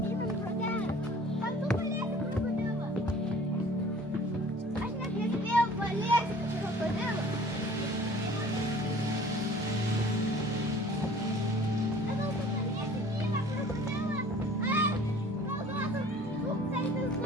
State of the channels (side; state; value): both; normal; correlation 0.49